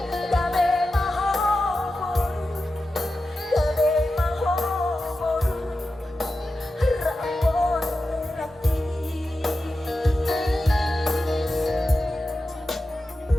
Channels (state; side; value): normal; both; correlation 0.92